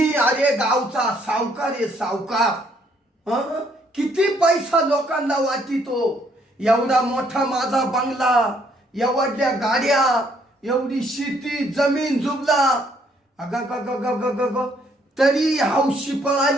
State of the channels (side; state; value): both; normal; correlation 0.68